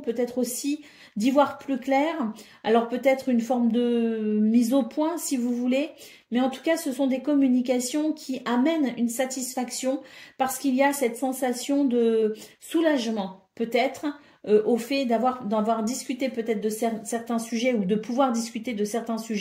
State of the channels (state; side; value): identical; both; correlation 1.00